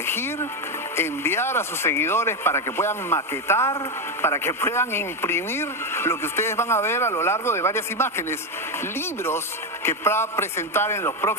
enviar a sus seguidores para que puedan maquetar, para que puedan imprimir lo que ustedes van a ver a lo largo de varias imágenes. Libros que va a presentar en los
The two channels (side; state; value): both; normal; correlation 0.10